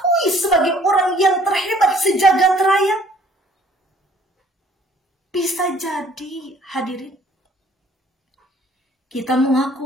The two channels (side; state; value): both; normal; correlation 0.58